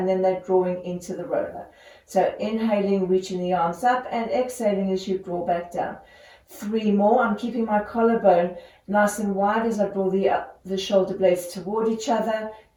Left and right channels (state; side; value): identical; both; correlation 1.00